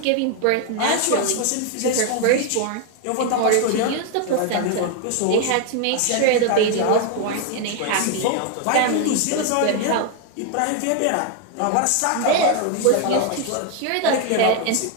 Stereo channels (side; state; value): both; different; correlation 0.01